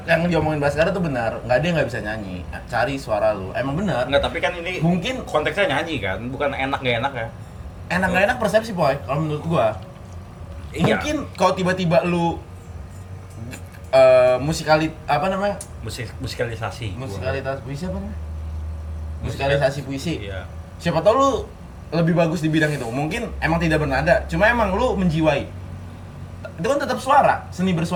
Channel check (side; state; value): both; identical; correlation 1.00